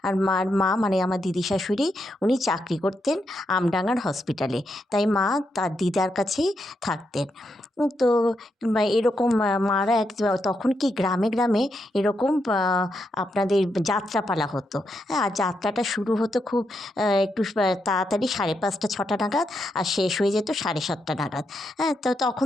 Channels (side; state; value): both; normal; correlation 0.82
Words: আর মার মা মানে আমার দিদি শাশুড়ি, উনি চাকরি করতেন আমডাঙার হসপিটালে। তাই মা তার দিদার কাছেই থাকতেন। তো এরকম মারা তখন কি গ্রামে গ্রামে এরকম আপনাদের যাত্রাপালা হতো। হ্যাঁ, আর যাত্রাটা শুরু হতো খুব একটু তাড়াতাড়ি 5:30 6টা নাগাদ, আর শেষ হয়ে যেত 7:30 নাগাদ। হ্যাঁ, তো তখন